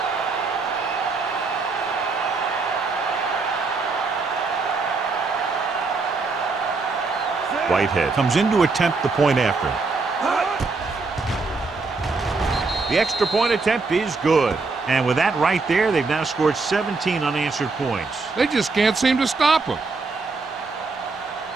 Whitehead comes in to attempt the point after. The extra point attempt is good. And with that right there, they've now scored 17 unanswered points. They just can't seem to stop him.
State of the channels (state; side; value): quieter; left; 4.0 dB